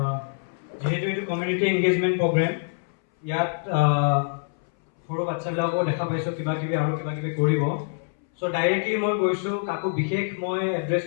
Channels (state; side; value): silent; right; 61 dB below the other